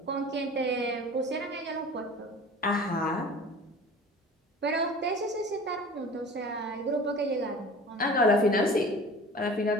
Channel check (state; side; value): normal; both; correlation 0.41